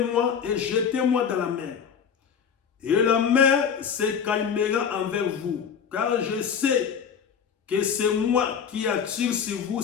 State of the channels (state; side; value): quieter; right; 7.2 dB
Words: et jetez-moi dans la mer. Et la mer se calmera envers vous, car je sais que c'est moi qui attire sur vous